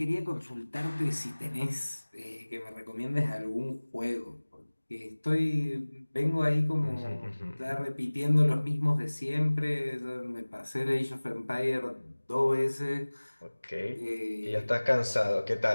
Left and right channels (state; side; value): inverted; both; correlation -1.00